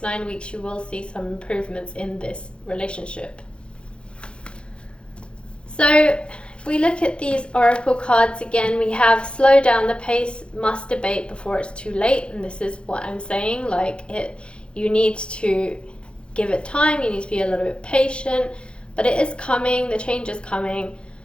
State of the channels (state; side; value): late; right; 0.056 ms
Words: 9 weeks, you will see some improvements in this relationship. So if we look at these oracle cards again, we have slow down the pace, must debate before it's too late. And this is what I'm saying, you need to give it time, you need to be a little bit patient. But it is coming, the change is coming.